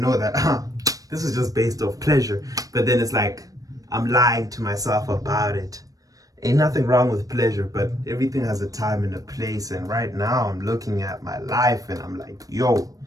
that this is just based off pleasure. But then it's like I'm lying to myself about it. Ain't nothing wrong with pleasure, but everything has a time and a place. And right now I'm looking at my life and I'm like, yo,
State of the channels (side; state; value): left; late; 0.17 ms